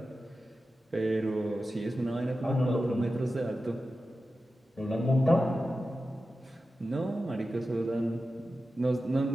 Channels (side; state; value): both; normal; correlation 0.93